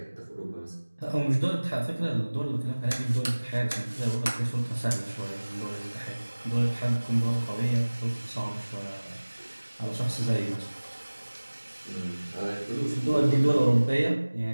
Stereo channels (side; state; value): both; inverted; correlation -1.00